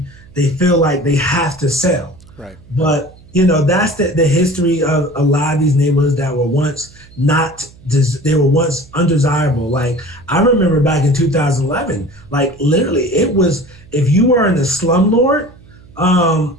feel like they have to sell. Right. But that's the history of a lot of these neighborhoods that were once they were once undesirable. Like, I remember back in 2011, like literally it was, if you were in a slumlord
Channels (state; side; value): noise; right; hum, 24 dB below the sound